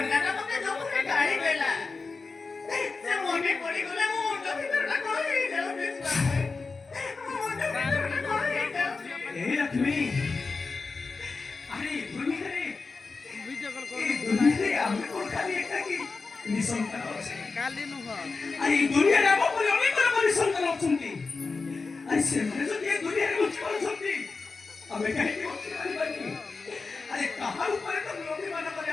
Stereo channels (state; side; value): quieter; right; 4.2 dB